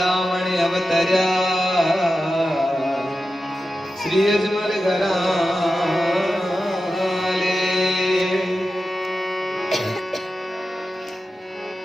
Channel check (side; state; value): both; normal; correlation 0.92